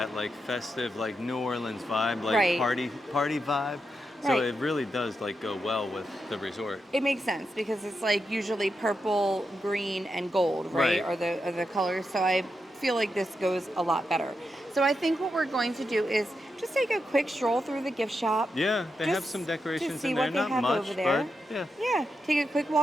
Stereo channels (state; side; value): normal; both; correlation 0.86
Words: like festive, like New Orleans vibe, like party vibe. So it really does like go well with the resort. It makes sense because it's like usually purple, green, and gold, right? Are the colors. So I feel like this goes a lot better. So I think what we're going to do is just take a quick stroll through the gift shop. Yeah, they have some decorations in there, not much, over there. But yeah, take a quick